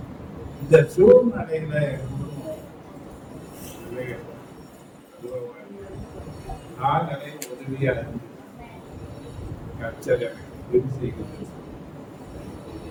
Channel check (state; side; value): identical; both; correlation 1.00